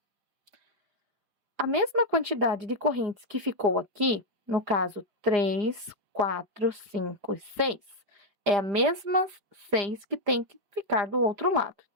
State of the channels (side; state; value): left; late; 4.9 ms